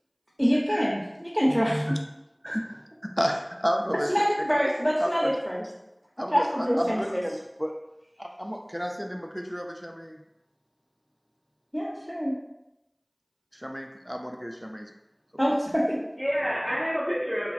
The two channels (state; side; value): identical; both; correlation 1.00